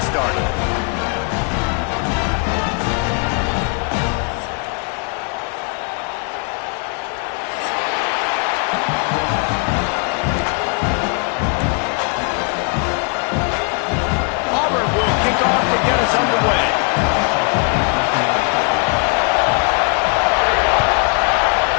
started. Auburn will kick off to get us underway.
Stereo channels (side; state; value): right; quieter; 36.9 dB